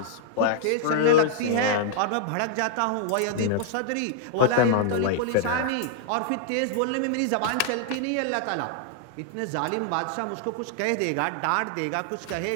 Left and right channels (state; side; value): different; both; correlation -0.01